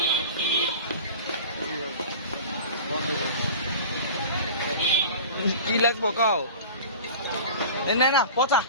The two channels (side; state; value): both; inverted; correlation -0.37